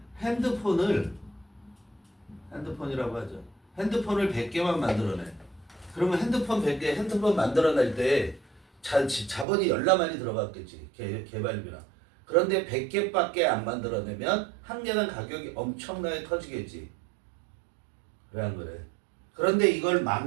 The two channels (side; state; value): left; drops out; at 9.5 s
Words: 핸드폰이라고 하죠. 핸드폰을 100개만 만들어내. 그러면 핸드폰 100개, 핸드폰 만들어낼 때 자본이 열나많이 들어갔겠지. 개발비나. 그런데 100개밖에 안 만들어내면 한 개당 가격이 엄청나게 커지겠지. 왜 안 그래? 그런데 이걸